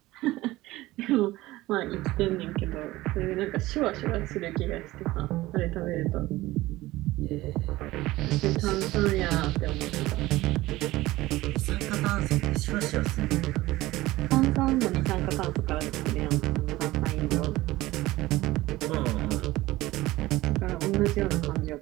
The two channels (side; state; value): left; quieter; 18.0 dB